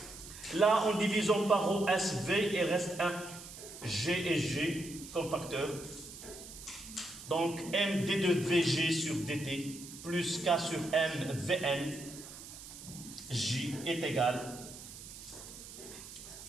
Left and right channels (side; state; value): right; noise; hiss, 14 dB below the sound